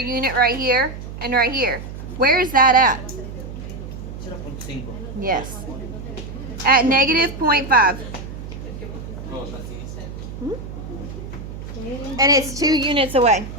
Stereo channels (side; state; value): right; noise; hum, 10 dB below the sound